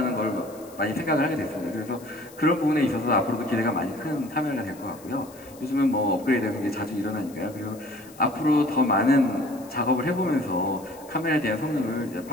걸 많이 생각을 하게 됐습니다. 그래서 그런 부분에 있어서 앞으로도 기대가 많이 큰 카메라가 될 것 같고요. 요즘은 뭐 업그레이드가 굉장히 자주 일어나니까요. 그리고 앞으로 더 많은 작업을 해보면서 카메라에 대한 성능을 이제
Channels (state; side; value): noise; left; hiss, 22 dB below the sound